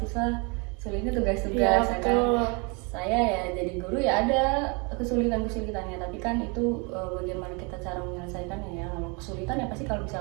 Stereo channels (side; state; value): left; quieter; 31.6 dB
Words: sulitnya tugas-tugas, Ya, kan saya ya jadi guru ya ada kesulitannya, tapi kan itu bagaimana kita cara menyelesaikannya ya. Kalau kesulitan ya pasti kalau